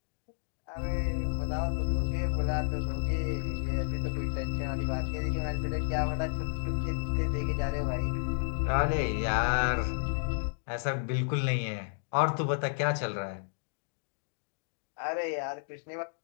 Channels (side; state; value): right; silent; digital silence